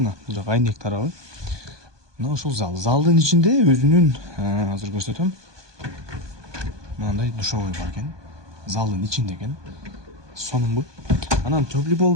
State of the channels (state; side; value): late; left; 1.2 ms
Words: Бул жак айнек тарабы. Мына ушул зал. Залдын ичинде өзүнүн, азыр көрсөтөм. Мындай душовой бар экен. Залдын ичинде экен. Сонунбу. Анан теплый пол